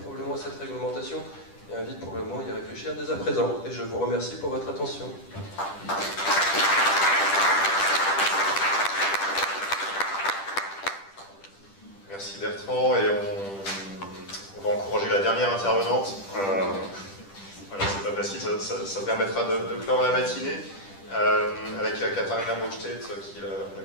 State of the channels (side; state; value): right; late; 10 ms